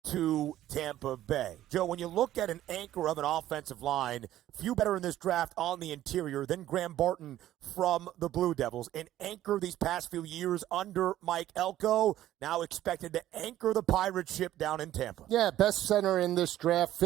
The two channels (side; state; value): left; quieter; 13.3 dB